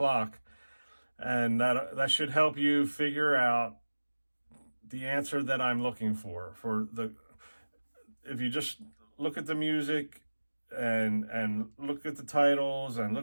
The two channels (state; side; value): inverted; both; correlation -1.00